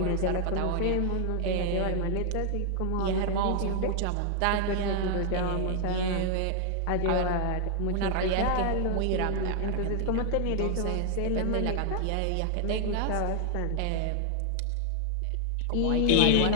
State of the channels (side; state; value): both; different; correlation 0.00